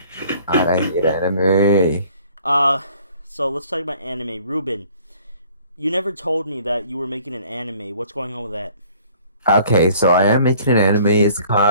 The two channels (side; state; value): both; inverted; correlation -0.55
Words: I hate anime. So let's talk about anime. Ruben, you never told me that you were making an anime. What's going on with that? Okay, so I am making an anime. It's